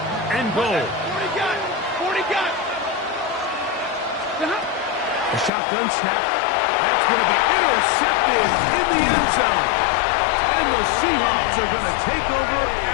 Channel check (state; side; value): drops out; right; at 5.5 s